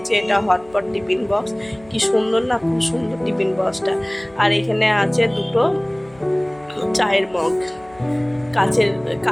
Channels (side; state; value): left; noise; hum, 26 dB below the sound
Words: এটা হটপট টিফিন বক্স, কি সুন্দর না, খুব সুন্দর টিফিন বক্সটা। আর এখানে আছে দুটো চায়ের মগ, কাচের